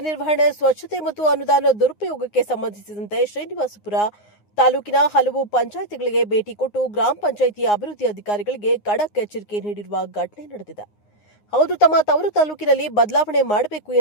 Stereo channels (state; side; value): late; right; 9.6 ms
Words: ನಿರ್ವಹಣೆ, ಸ್ವಚ್ಛತೆ ಮತ್ತು ಅನುದಾನ ದುರುಪಯೋಗಕ್ಕೆ ಸಂಬಂಧಿಸಿದಂತೆ ಶ್ರೀನಿವಾಸಪುರ ತಾಲೂಕಿನ ಹಲವು ಪಂಚಾಯಿತಿಗಳಿಗೆ ಭೇಟಿ ಕೊಟ್ಟು ಗ್ರಾಮ ಪಂಚಾಯಿತಿ ಅಭಿವೃದ್ಧಿ ಅಧಿಕಾರಿಗಳಿಗೆ ಖಡಕ್ ಎಚ್ಚರಿಕೆ ನೀಡಿರುವ ಘಟನೆ ನಡೆದಿದೆ. ಹೌದು, ತಮ್ಮ ತವರು ತಾಲೂಕಿನಲ್ಲಿ ಬದಲಾವಣೆ ಮಾಡಬೇಕು